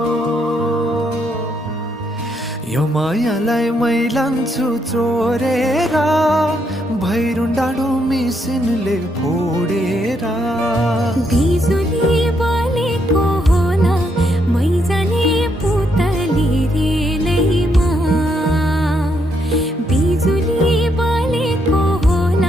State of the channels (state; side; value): normal; both; correlation 0.76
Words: यो मायालाई मै लान्छु चोरेर भैरुन डाँडो मिसिनले फोडेर बिजुली बलेको होला मै जाने पुतली रेलैमा बिजुली बलेको